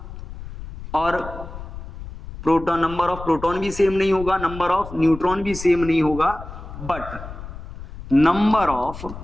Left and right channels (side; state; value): left; noise; rumble, 12 dB below the sound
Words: और प्रोटॉन, नंबर ऑफ प्रोटॉन भी सेम नहीं होगा, नंबर ऑफ न्यूट्रॉन भी सेम नहीं होगा, बट नंबर